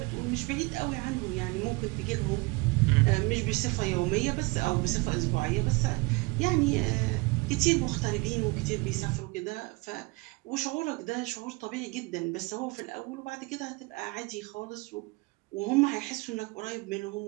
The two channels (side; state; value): left; quieter; 25.1 dB